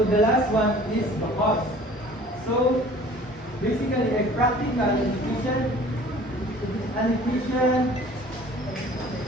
the last one is the cost. So basically a practical and efficient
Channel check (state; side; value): normal; both; correlation 0.48